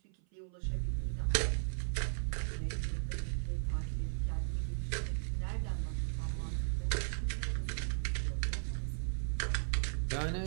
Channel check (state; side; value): silent; left; 53 dB below the other